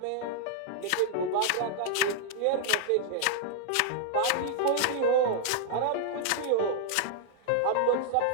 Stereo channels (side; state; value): both; different; correlation -0.01